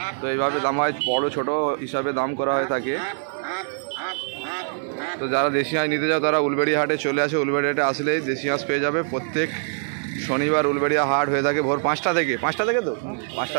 তো এইভাবে দাম হয়, বড় ছোট হিসাবে দাম করা হয়ে থাকে। তো যারা দেশি হাঁস নিতে যাও তারা উলবেড়িয়া হাটে চলে আসে। উলবেড়িয়া হাটে আসলেই দেশি হাঁস পেয়ে যাবে। প্রত্যেক শনিবার উলবেড়িয়া হাট হয়ে থাকে ভোর 5টা থেকে। 5টা থেকে তো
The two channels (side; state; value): left; silent; 63 dB below the other